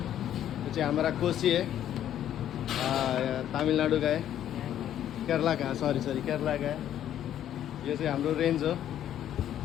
चाहिँ हमारा कोसी है, तमिलनाडु का है, केरला का, सॉरी केरला का है। यो चाहिँ हाम्रो रेन्ज हो।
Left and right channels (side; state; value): right; quieter; 11.0 dB